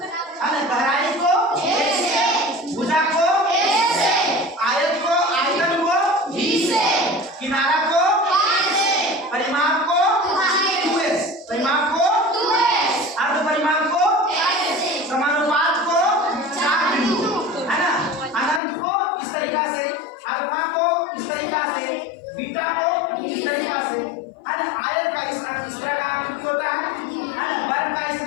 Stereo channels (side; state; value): right; drops out; at 18.6 s